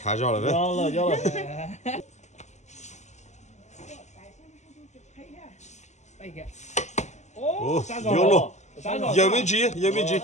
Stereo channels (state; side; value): late; right; 0.33 ms